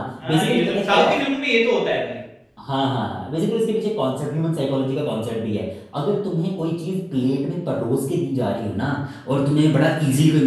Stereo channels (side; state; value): both; identical; correlation 1.00